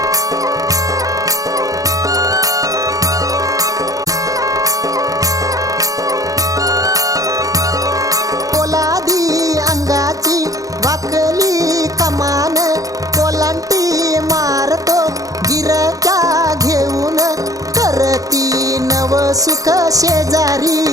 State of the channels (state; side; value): late; left; 0.17 ms